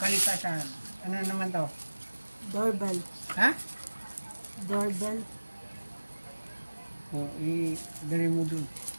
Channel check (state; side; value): inverted; both; correlation -1.00